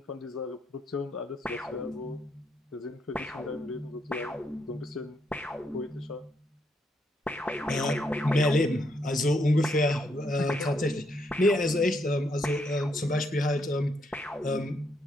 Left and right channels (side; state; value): both; normal; correlation 0.76